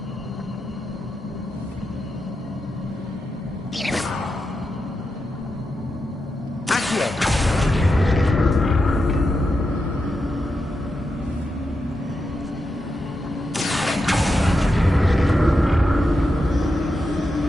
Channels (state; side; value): normal; both; correlation 0.87